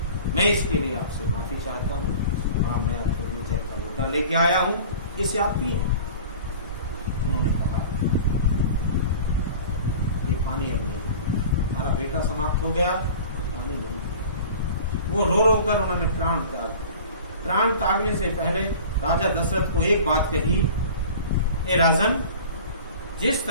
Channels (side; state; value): both; inverted; correlation -0.41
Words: मैं इसके लिए आपसे माफी चाहता हूं। हाँ, मैं आपके लिए जल का लोटा लेके आया हूं, इसे आप पिए। उन्होंने कहा ये पानी अब नहीं, हमारा बेटा समाप्त हो गया, पानी नहीं। वो रो रो कर उन्होंने प्राण त्यागने से पहले राजा दशरथ को एक बात कही, ए राजन, जिस